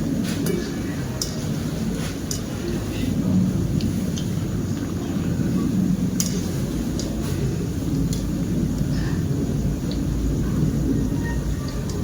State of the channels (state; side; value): identical; both; correlation 1.00